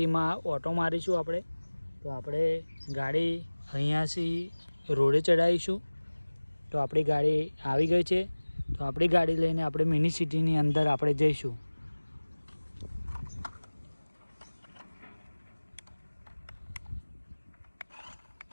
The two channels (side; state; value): both; inverted; correlation -1.00